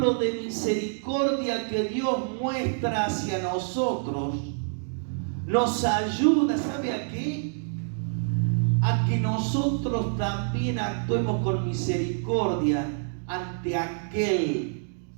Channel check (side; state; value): left; silent; digital silence